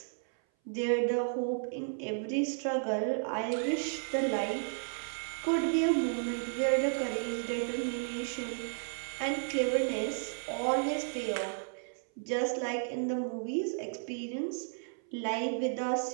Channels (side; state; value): left; silent; 56 dB below the other